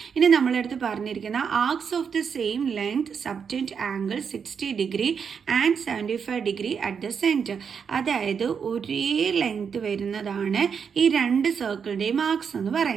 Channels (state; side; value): quieter; left; 6.6 dB